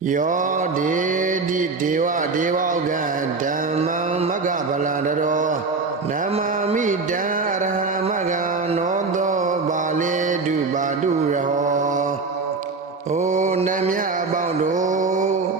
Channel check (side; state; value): left; quieter; 4.2 dB